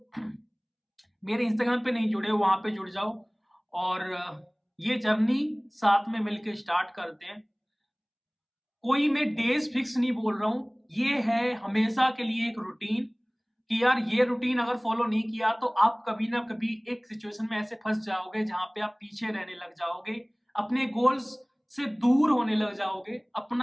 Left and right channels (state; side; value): identical; both; correlation 1.00